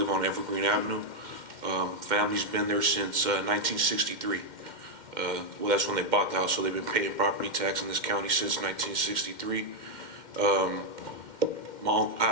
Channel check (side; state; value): left; late; 2.1 ms